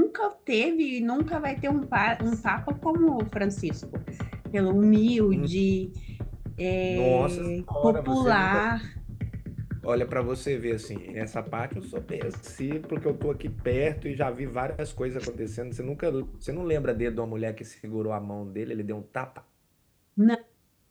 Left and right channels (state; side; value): identical; both; correlation 1.00